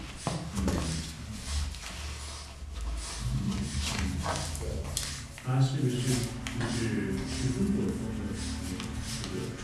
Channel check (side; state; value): both; identical; correlation 1.00